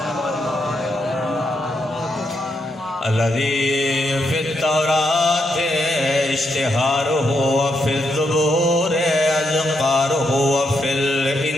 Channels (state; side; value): normal; both; correlation 0.80